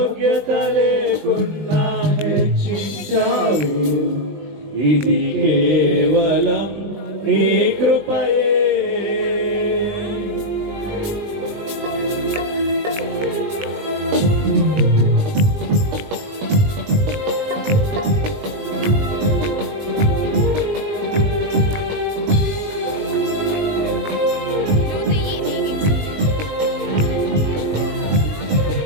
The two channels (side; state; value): left; late; 20 ms